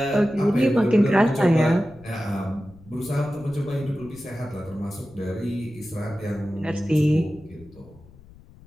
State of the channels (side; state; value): left; noise; rumble, 23 dB below the sound